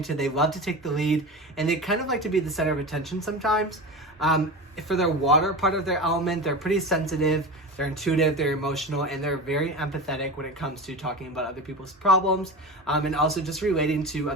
They love to take the lead, and they kind of like to be the center of attention sometimes. For their water part of their element, they're pretty sensitive, they're intuitive, they're emotional, and they're very empathetic when it comes to talking about other people's problems, and also just relating to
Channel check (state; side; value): normal; both; correlation 0.28